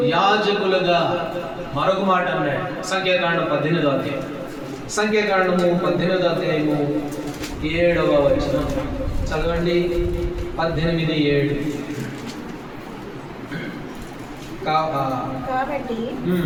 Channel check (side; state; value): both; identical; correlation 1.00